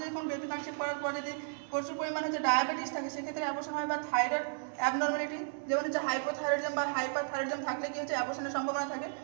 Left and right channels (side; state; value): left; silent; digital silence